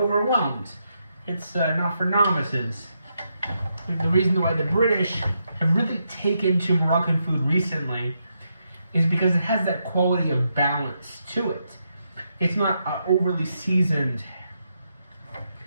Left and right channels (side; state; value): both; inverted; correlation -0.82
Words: It's not for novices. The reason why the British have really taken to Moroccan food recently is because it has that quality of balance to it. It's not overly seasoned,